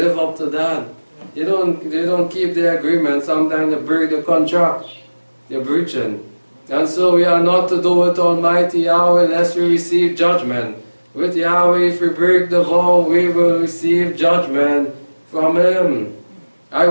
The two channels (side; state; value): both; inverted; correlation -1.00